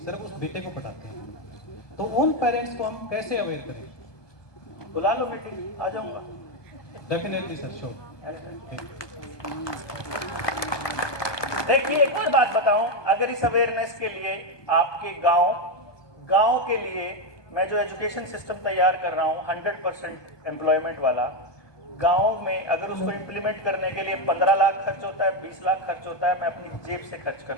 सिर्फ उस बेटे को पढ़ाते हैं। तो उन पेरेंट्स को हम कैसे अवेयर करें? बुला लो मीटिंग, आ जाऊंगा। Definitely sir, sure. देखिए एक और बात बताऊं, अगर इस अवेयरनेस के लिए आपके गांव के लिए मैं जो एजुकेशन सिस्टम तैयार कर रहा हूं 100% एम्प्लॉयमेंट वाला, गांव में अगर उसको इम्प्लीमेंट करने के लिए 15 लाख खर्च होता है, 20 लाख खर्च होता है, मैं अपनी जेब से खर्च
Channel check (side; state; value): right; late; 1.2 ms